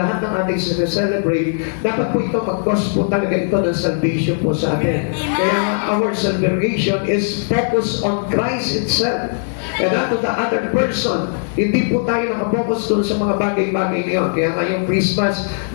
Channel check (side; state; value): right; silent; digital silence